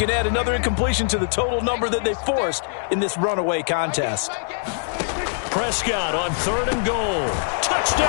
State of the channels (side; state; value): right; silent; digital silence